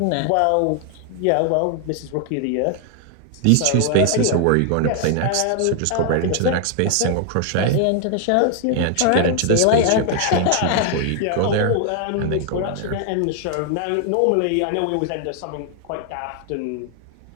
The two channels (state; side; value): different; both; correlation 0.00